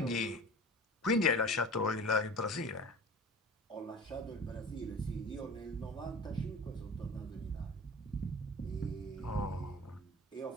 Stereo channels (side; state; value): both; normal; correlation 0.37